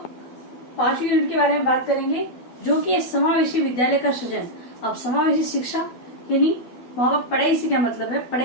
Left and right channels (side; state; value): right; late; 12 ms